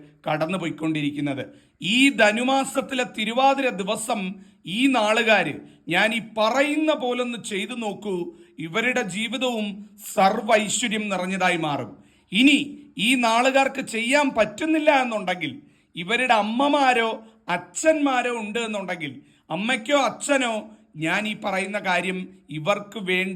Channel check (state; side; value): identical; both; correlation 1.00